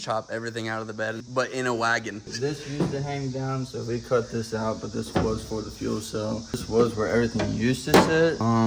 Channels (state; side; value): identical; both; correlation 1.00